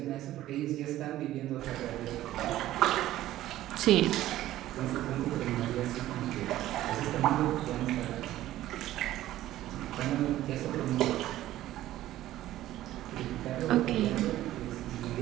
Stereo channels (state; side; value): quieter; left; 14.3 dB